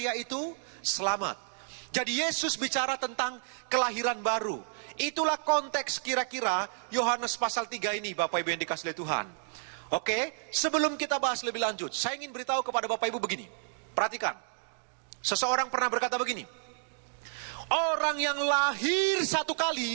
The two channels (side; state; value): left; silent; digital silence